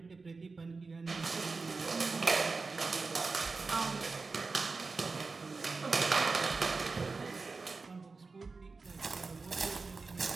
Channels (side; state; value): left; quieter; 4.1 dB